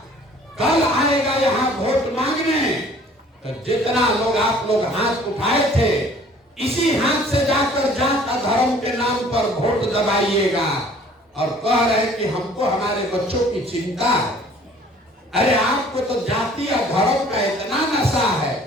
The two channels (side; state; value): both; normal; correlation 0.53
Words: कल आएगा यहाँ वोट मांगने। तो जितना लोग आप लोग हाथ उठाए थे, इसी हाथ से जाकर जात धर्म के नाम पर वोट दबाइएगा और कह रहे कि हमको हमारे बच्चों की चिंता है। अरे आपको तो जाति और धर्म का इतना नशा है